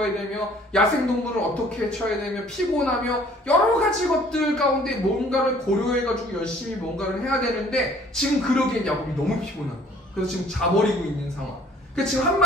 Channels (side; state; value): both; normal; correlation 0.57